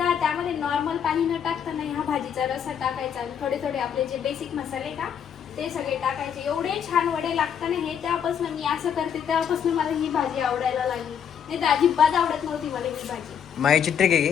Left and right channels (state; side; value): quieter; right; 8.2 dB